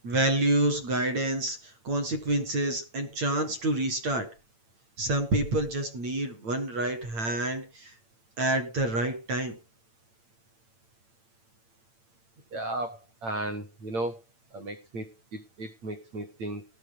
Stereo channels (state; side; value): late; left; 8.8 ms